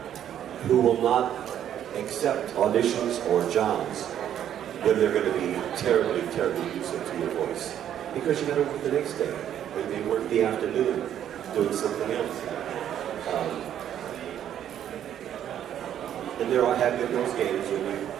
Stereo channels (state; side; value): quieter; left; 10.3 dB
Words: who will not accept auditions or jobs when they're going to be terribly, terribly abusive to your voice. Because you got to work the next day. Maybe they work the afternoon doing something else. And there have been those games